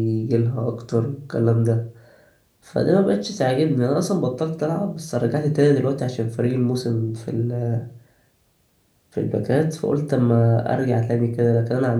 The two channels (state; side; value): identical; both; correlation 1.00